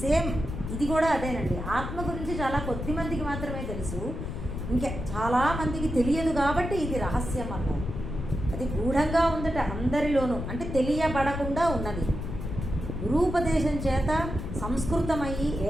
సేమ్ ఇది కూడా అదేనండి. ఆత్మ గురించి చాలా కొద్ది మందికి మాత్రమే తెలుసు, ఇంకా చాలా మందికి తెలియదు కాబట్టి ఇది రహస్యం అన్నారు. అది గూఢంగా ఉందట అందరిలోనూ, అంటే తెలియబడకుండా ఉన్నది. గురూపదేశం చేత సంస్కృతమయ్యి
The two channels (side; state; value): left; noise; rumble, 6 dB below the sound